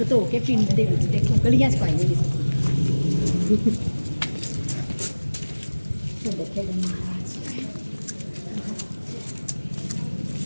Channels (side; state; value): both; inverted; correlation -1.00